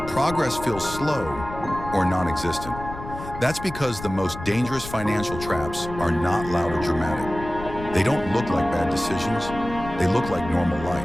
progress feels slow or non-existent. That's because the most dangerous financial traps are not loud or dramatic. They don't look like bad decisions, they look like normal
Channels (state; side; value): noise; left; rumble, 11 dB below the sound